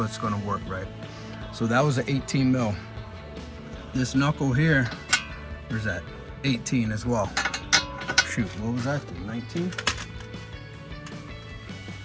going to work, right? So that was an 18 mil. This knuckle here, where's that? 18 as well. Shoot, what was that? 19?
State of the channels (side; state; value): both; identical; correlation 1.00